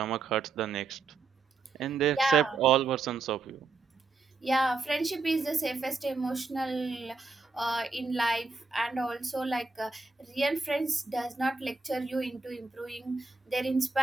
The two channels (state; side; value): quieter; left; 4.0 dB